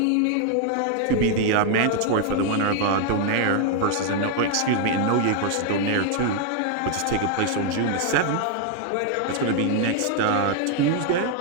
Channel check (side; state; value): both; different; correlation 0.00